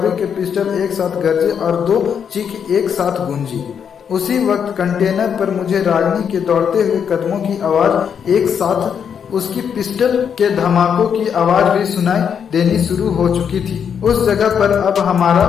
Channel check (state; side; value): quieter; right; 7.5 dB